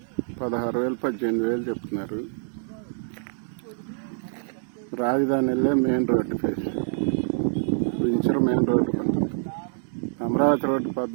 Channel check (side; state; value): left; silent; digital silence